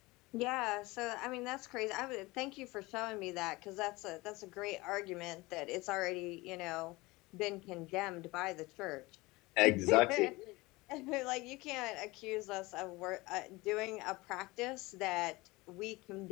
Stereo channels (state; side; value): quieter; right; 22.0 dB